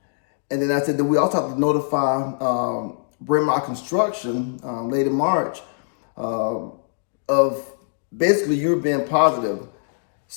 And then I said that we also have to notify Brand My Construction late in March of basically you being positive.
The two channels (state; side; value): silent; right; digital silence